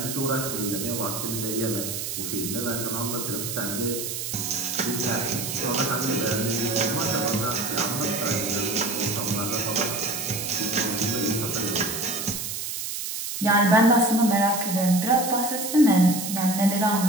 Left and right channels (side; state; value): right; noise; hiss, 5 dB below the sound